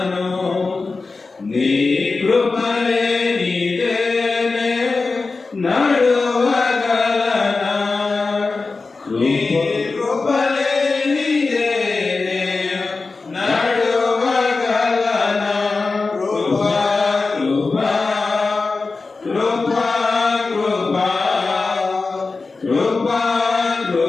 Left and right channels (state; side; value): quieter; right; 4.0 dB